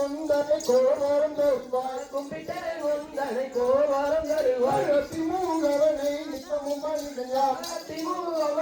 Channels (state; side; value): identical; both; correlation 1.00